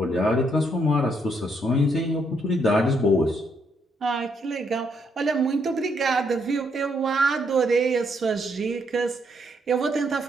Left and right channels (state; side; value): normal; both; correlation 0.74